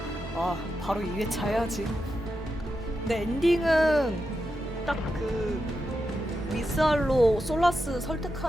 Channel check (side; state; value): both; normal; correlation 0.87